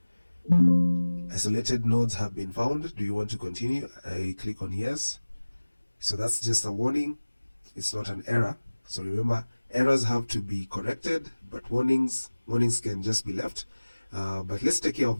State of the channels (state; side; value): inverted; both; correlation -1.00